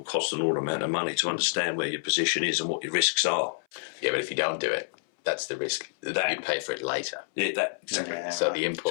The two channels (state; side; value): silent; right; 59 dB below the other